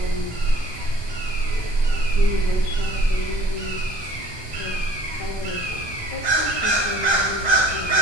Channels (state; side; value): late; right; 1.2 ms